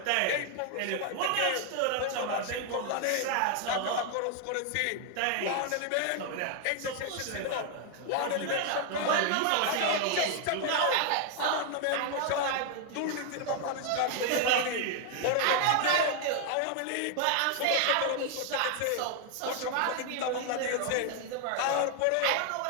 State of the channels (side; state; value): both; different; correlation 0.00